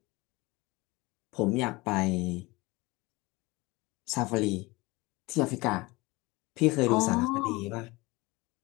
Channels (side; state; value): right; quieter; 22.9 dB